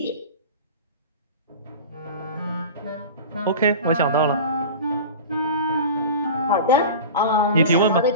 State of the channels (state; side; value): inverted; both; correlation -0.32